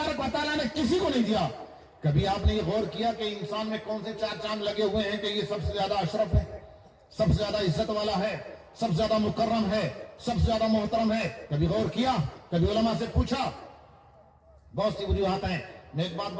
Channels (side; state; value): both; identical; correlation 1.00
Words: و تعالیٰ نے کسی کو نہیں دیا. کبھی آپ نے یہ غور کیا کہ انسان میں کون سے 4 چاند لگے ہوئے ہیں کہ یہ سب سے زیادہ اشرف ہے، سب سے زیادہ عزت والا ہے، سب سے زیادہ مکرم ہے، سب سے زیادہ محترم ہے؟ کبھی غور کیا؟ کبھی علماء سے پوچھا؟ بہت سی وجوہات ہیں. میں ایک بات